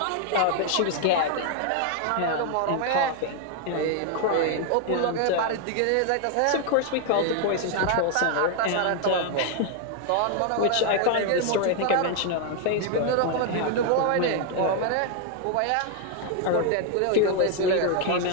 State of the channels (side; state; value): both; different; correlation 0.00